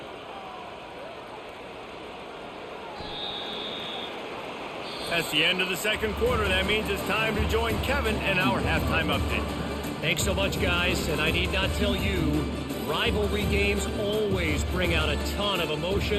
That's the end of the second quarter. That means it's time to join Kevin and our halftime update. Thanks so much, guys. And I need not tell you, rivalry games always bring out a ton of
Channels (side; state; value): both; identical; correlation 1.00